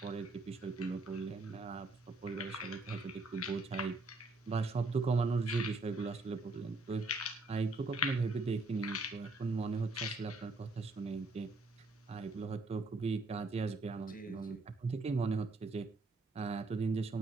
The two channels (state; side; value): quieter; left; 3.1 dB